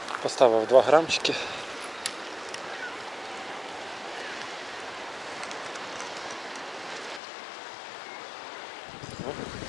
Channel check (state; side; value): drops out; right; at 7.2 s